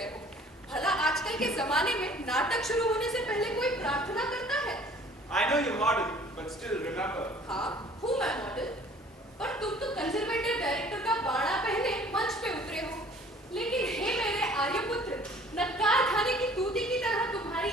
हो? भला आजकल के जमाने में नाटक शुरू होने से पहले कोई प्रार्थना करता है? I know you're model, but still remember. हाँ, हूँ मैं मॉडल, पर तुम तो कंजर्वेटिव डायरेक्टर का बाड़ा पहने मंच पे उतरे हो। लेकिन हे मेरे आर्यपुत्र, नक्कार खाने की तूती की तरह तुम्हारी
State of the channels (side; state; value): both; normal; correlation 0.52